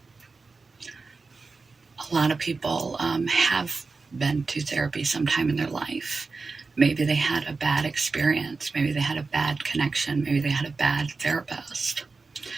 A lot of people have been to therapy sometime in their life. Maybe they had a bad experience. Maybe they had a bad connection. Maybe they had a bad therapist.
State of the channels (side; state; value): left; quieter; 4.2 dB